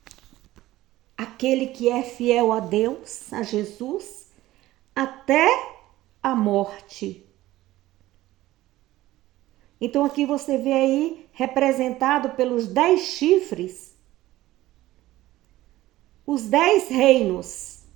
Aquele que é fiel a Deus, a Jesus, até a morte. Então aqui você vê aí representado pelos 10 chifres, os 10 reinos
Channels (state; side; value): quieter; left; 16.3 dB